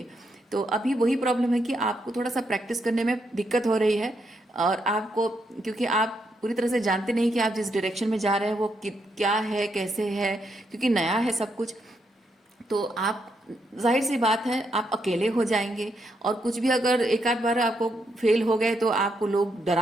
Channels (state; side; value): normal; both; correlation 0.79